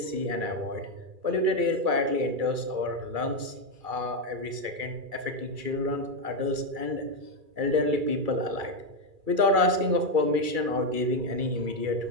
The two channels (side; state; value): left; late; 2.3 ms